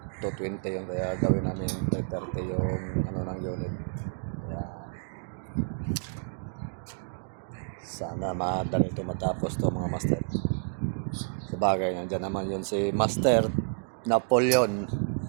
220 yung, kaya gawin namin 330 yung ng unit. Kaya sana madali ito matapos to mga master. Sabagay, nandiyan naman yun si Master Napoleon.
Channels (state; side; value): silent; left; digital silence